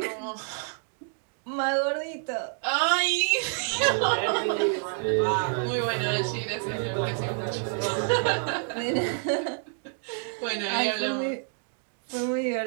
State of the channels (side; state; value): left; silent; 59 dB below the other